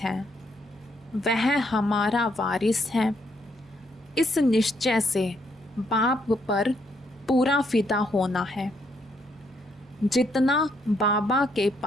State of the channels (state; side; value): normal; both; correlation 0.73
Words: हैं, वह हमारा वारिस है। इस निश्चय से बाप पर पूरा फिदा होना है। जितना बाबा के